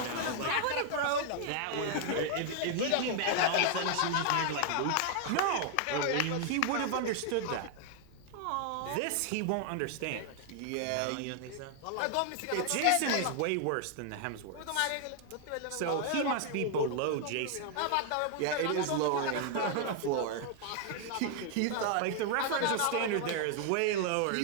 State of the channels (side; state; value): both; different; correlation 0.00